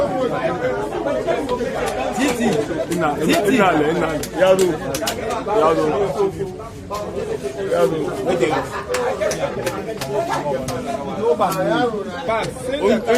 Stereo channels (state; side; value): identical; both; correlation 1.00